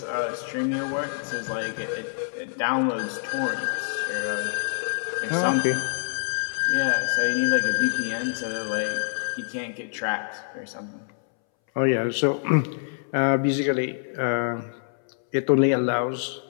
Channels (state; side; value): silent; right; 61 dB below the other